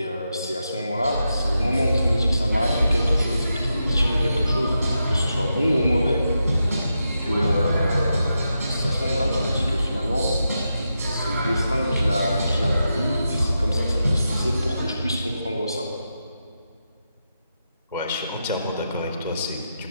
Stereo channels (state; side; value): inverted; both; correlation -0.87